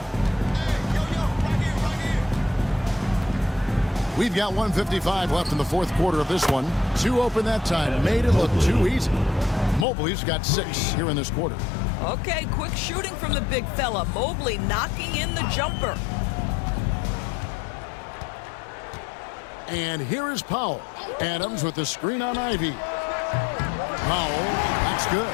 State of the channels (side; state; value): right; drops out; at 9.9 s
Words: We've got 1:55 left in the fourth quarter of this one. 2 open that time. Made it look too easy. Mobley's got 6 here in this quarter. Okay, quick shooting from the big fella. Mobley knocking in the jumper. And here is Powell. Adams with the screen on Ivy. Powell, that's good.